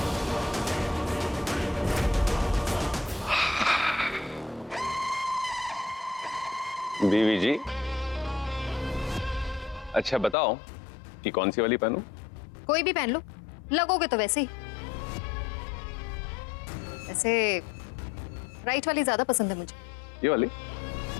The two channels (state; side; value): drops out; right; at 10.4 s